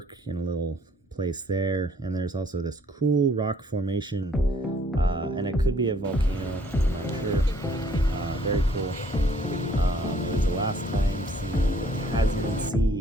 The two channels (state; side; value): normal; both; correlation 0.62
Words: in a little place there, and there's also this cool rock formation, and it could be a volcano, I'm not sure. Very cool. It was the last time seeing the Tasman